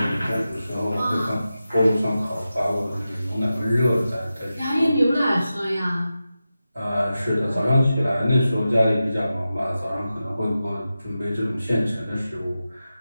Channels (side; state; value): both; inverted; correlation -0.92